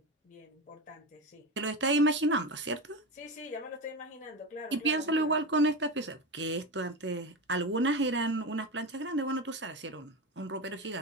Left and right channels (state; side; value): normal; both; correlation 0.20